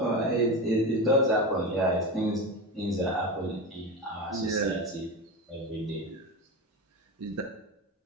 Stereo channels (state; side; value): normal; both; correlation 0.22